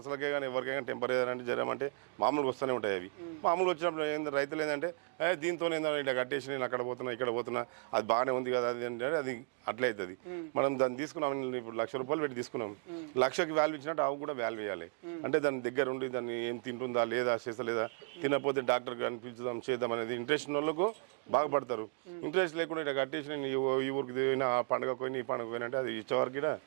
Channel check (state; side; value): quieter; left; 39.0 dB